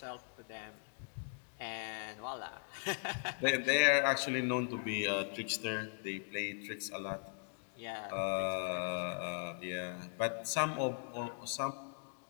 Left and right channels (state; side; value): silent; right; digital silence